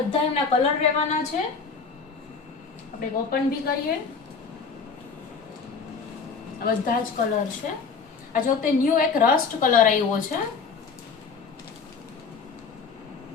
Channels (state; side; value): quieter; right; 5.2 dB